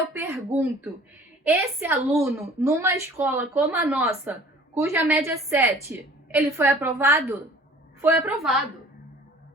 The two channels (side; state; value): both; normal; correlation 0.50